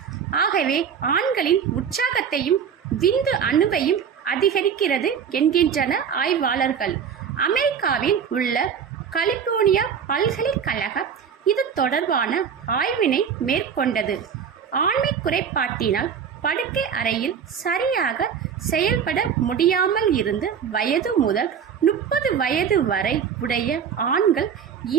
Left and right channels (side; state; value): left; quieter; 7.4 dB